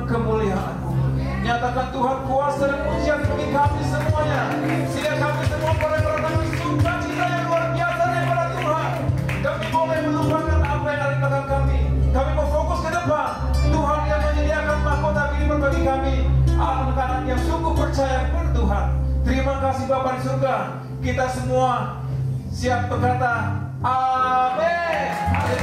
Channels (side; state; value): both; identical; correlation 1.00